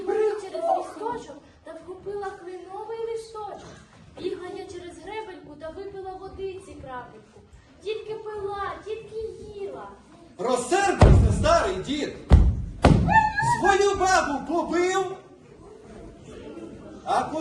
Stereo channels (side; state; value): both; identical; correlation 1.00